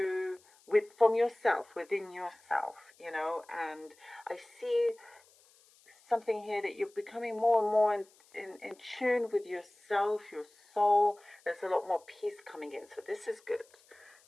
from yourself, within yourself, and I see something here that you're becoming more and more in tune with yourself, your soul. There's a lot more peace coming in, so this is good.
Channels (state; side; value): noise; left; hiss, 29 dB below the sound